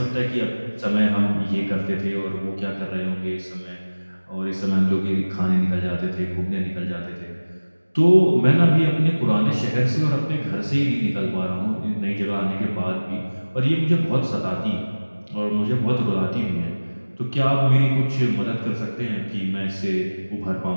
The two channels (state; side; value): inverted; both; correlation -1.00